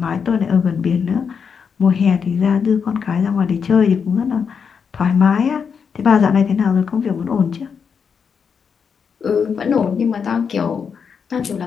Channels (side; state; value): right; quieter; 6.4 dB